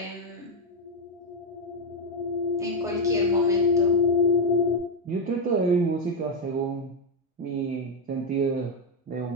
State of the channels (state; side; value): normal; both; correlation 0.04